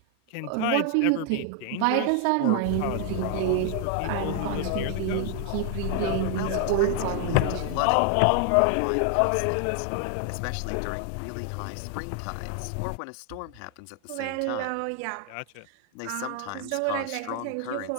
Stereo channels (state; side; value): different; both; correlation 0.00